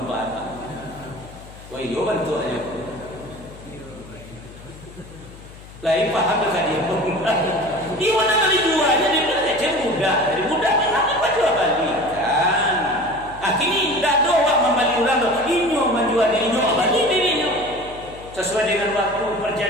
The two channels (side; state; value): left; noise; hum, 18 dB below the sound